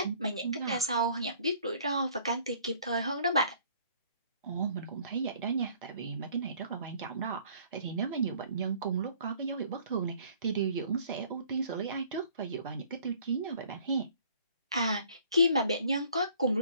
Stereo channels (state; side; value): inverted; both; correlation -0.57